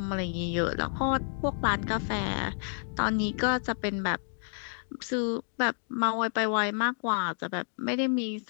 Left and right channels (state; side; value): silent; right; digital silence